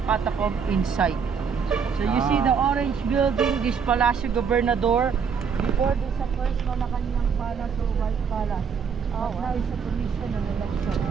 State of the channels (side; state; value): left; quieter; 6.3 dB